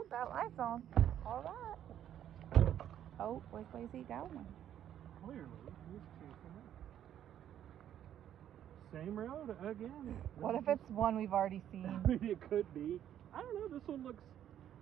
that light's on. All right. Oh, which way's he going? Clearly, he's chasing it. Same road again. What if it's one we've already seen? It could be. I don't know. This one looks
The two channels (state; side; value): quieter; left; 10.6 dB